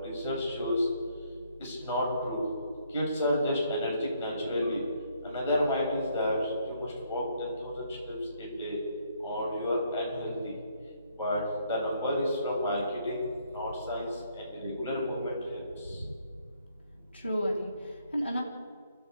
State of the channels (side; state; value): both; inverted; correlation -0.69